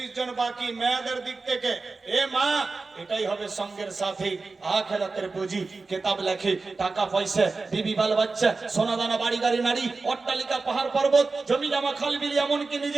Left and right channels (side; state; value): left; quieter; 3.9 dB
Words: জন বাকি। মেয়েদের দিক থেকে এ মা, এটাই হবে সঙ্গের সাথী, আখিরাতের পুঁজি। কিতাব লেখে, টাকা পয়সা, বিবি বাল বাচ্চা, সোনা দানা, বাড়ি গাড়ি নারী, অট্টালিকা, পাহাড় পর্বত, জমি জমা, খাল বিল, এমনকি